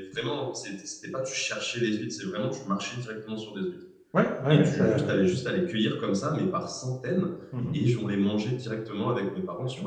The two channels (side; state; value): both; identical; correlation 1.00